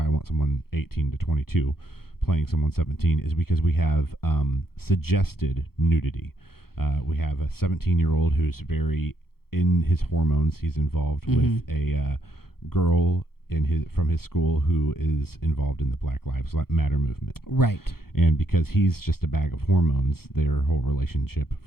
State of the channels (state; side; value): late; right; 0.94 ms